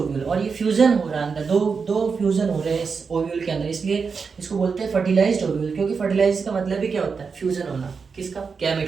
और ये फ्यूजन हो रहा है अंदर, दो फ्यूजन हो रहे हैं इस ओव्यूल के अंदर, इसलिए इसको बोलते हैं फर्टिलाइज्ड ओव्यूल। क्योंकि फर्टिलाइज का मतलब ही क्या होता है? फ्यूजन होना। किसका?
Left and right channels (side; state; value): left; quieter; 5.4 dB